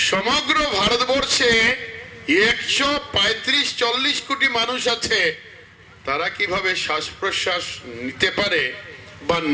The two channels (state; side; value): identical; both; correlation 1.00